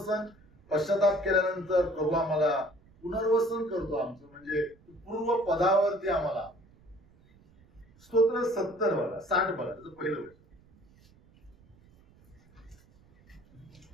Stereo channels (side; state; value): right; noise; rumble, 28 dB below the sound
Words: पश्चाताप केल्यानंतर प्रभू आम्हाला पुनर्वसन करतो आमचं, म्हणजे पूर्व पदावरती आम्हाला. स्तोत्र 70 बघा, 60 बघा, त्याचं पहिलं वचन.